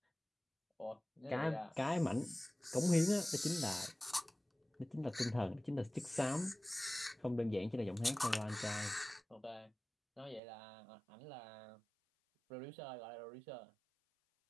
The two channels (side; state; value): left; drops out; at 10.4 s